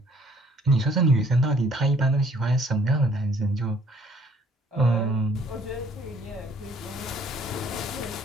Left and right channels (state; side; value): normal; both; correlation 0.60